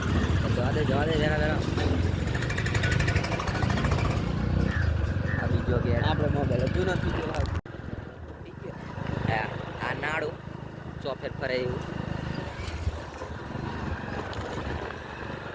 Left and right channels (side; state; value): both; identical; correlation 1.00